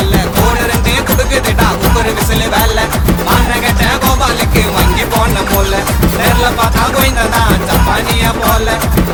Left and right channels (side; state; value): both; identical; correlation 1.00